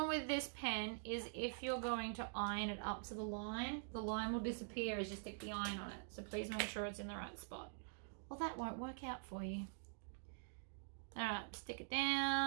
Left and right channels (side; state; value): left; silent; digital silence